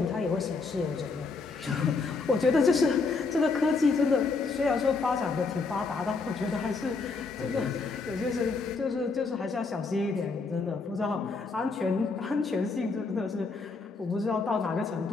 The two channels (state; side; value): quieter; right; 4.2 dB